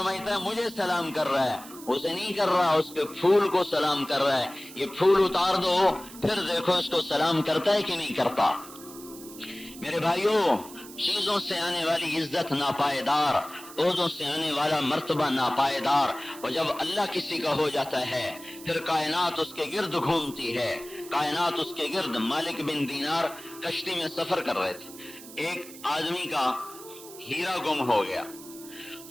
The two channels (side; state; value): right; noise; hiss, 17 dB below the sound